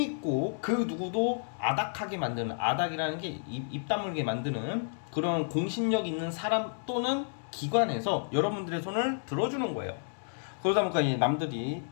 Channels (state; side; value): silent; right; digital silence